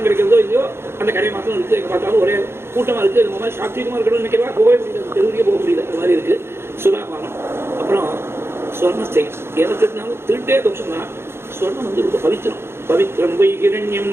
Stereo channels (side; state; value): left; late; 0.12 ms